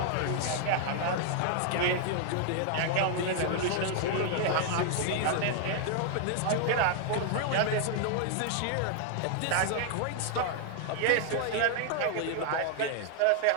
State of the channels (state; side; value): different; both; correlation 0.00